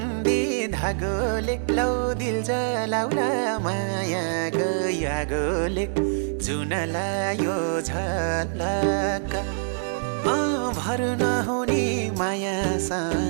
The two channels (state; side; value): silent; left; digital silence